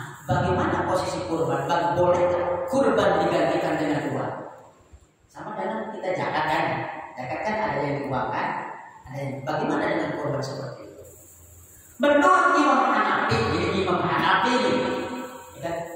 bagaimana posisi kurban? Boleh kurban digantikan dengan uang? Sama dengan kita zakat kan? Zakat kan ada yang diuangkan, ada yang bagaimana dengan kurban seperti itu? Menurut Imam Hanafi, jadi Imam Hanafi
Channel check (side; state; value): both; identical; correlation 1.00